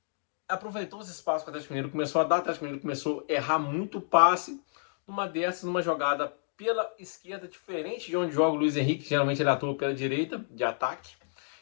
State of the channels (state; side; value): silent; right; digital silence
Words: aproveitou os espaços que o Atlético Mineiro começou a dar. O Atlético Mineiro começou a errar muito passe. Numa jogada pela esquerda, diferente de onde joga o Luiz Henrique, geralmente ele atua pela direita, de ataque.